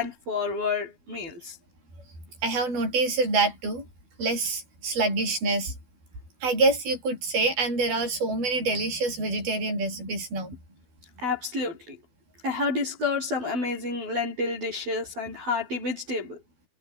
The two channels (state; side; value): late; left; 12 ms